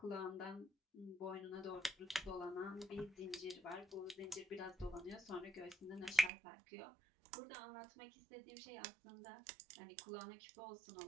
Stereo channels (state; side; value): drops out; left; at 6.3 s